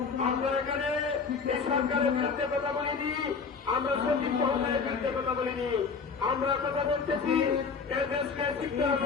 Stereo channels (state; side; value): quieter; right; 5.3 dB